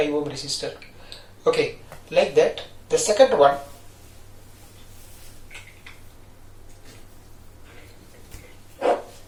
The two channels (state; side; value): identical; both; correlation 1.00